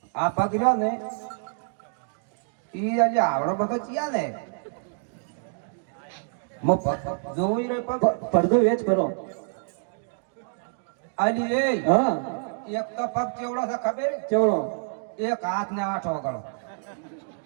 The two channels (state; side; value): silent; left; digital silence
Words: આ પગ રહ્યો ને ઈ આજે આવડો બધો ચિયા ને મો પગ જોઈ રે પગ પડદો વેચ કરો આલી એ હા એક તો પગ ચેવડો છે ખબર ચેવડો એક હાથ ને 8 ઓગળો